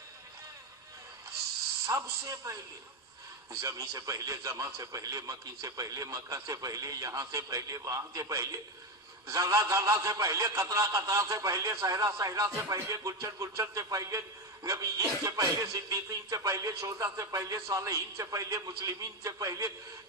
زمین سے پہلے، زمان سے پہلے، مکی سے پہلے، مکہ سے پہلے، یہاں سے پہلے، وہاں سے پہلے، ذرہ ذرہ سے پہلے، قطرہ قطرہ سے پہلے، صحرا صحرا سے پہلے، گلشن گلشن سے پہلے، نبیین سے پہلے، صدیقین سے پہلے، شہداء سے پہلے، صالحین سے پہلے، مسلمین سے پہلے،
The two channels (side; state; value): both; normal; correlation 0.13